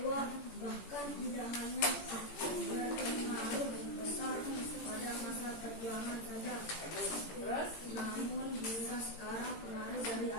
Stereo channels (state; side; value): late; right; 18 ms